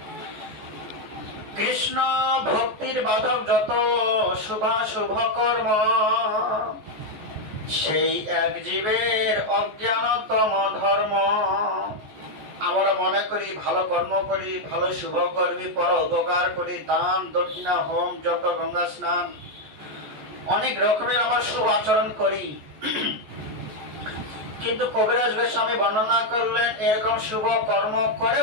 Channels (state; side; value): late; left; 14 ms